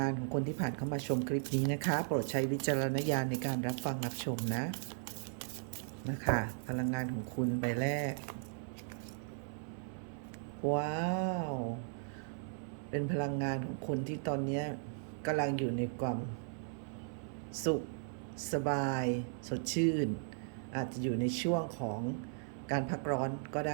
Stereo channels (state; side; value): silent; left; 53 dB below the other